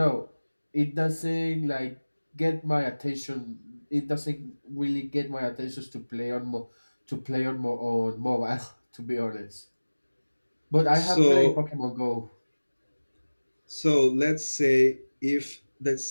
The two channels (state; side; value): inverted; both; correlation -1.00